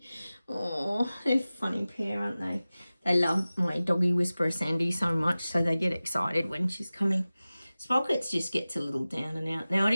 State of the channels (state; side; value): inverted; both; correlation -0.97